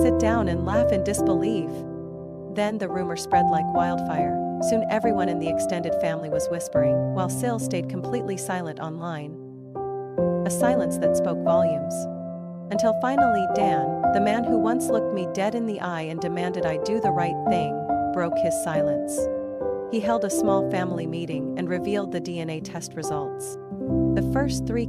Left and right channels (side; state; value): both; identical; correlation 1.00